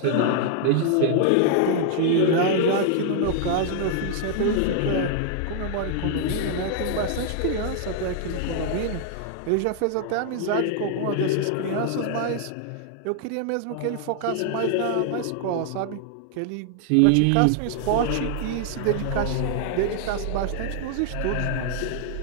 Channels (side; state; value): both; different; correlation 0.00